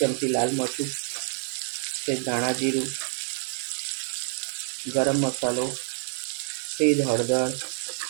લાલ મરચું, ધાણા જીરું, ગરમ મસાલો, સેજ હળદર,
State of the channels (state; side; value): silent; left; 59 dB below the other